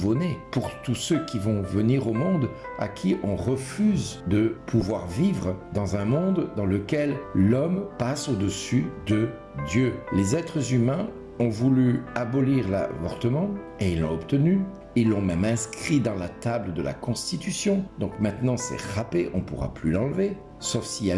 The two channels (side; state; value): both; identical; correlation 1.00